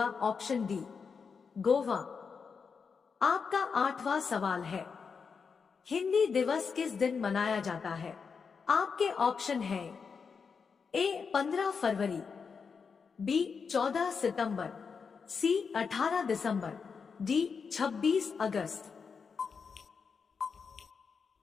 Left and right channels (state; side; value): quieter; right; 5.7 dB